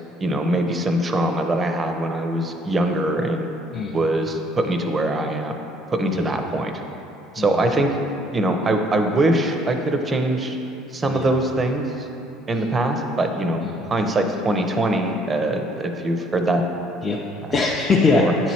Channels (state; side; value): normal; both; correlation 0.64